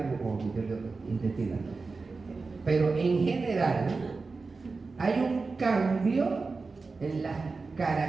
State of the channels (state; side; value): quieter; left; 4.1 dB